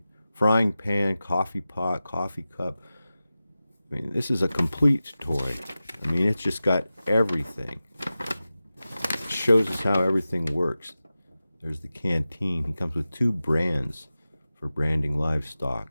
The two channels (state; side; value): inverted; both; correlation -0.95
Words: Frying pan, coffee pot, coffee cup. I mean, this is a complete toy. I mean, it's just got everything. It shows us how everything works. There's the canteen. He comes with 2 brands for branding